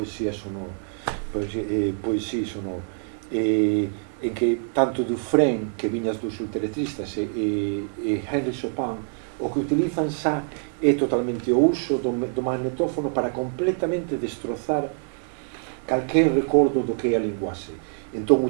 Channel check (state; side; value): silent; left; digital silence